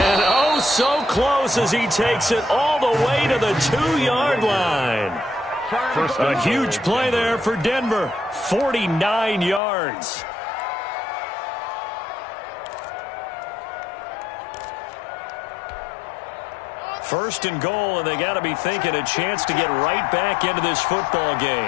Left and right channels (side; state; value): right; drops out; at 9.6 s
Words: oh, so close as he takes it all the way to the 2-yard line. A huge play there for Denver. 49 yards. First and goal, and they got to be thinking a chance to get right back into this football